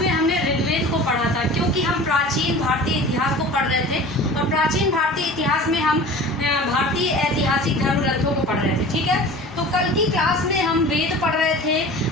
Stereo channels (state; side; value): normal; both; correlation 0.39